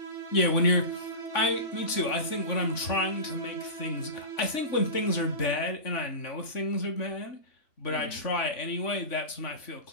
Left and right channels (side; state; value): right; late; 3.5 ms